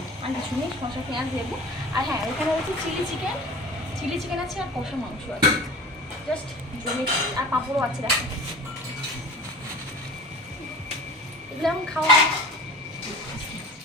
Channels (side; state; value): both; normal; correlation 0.38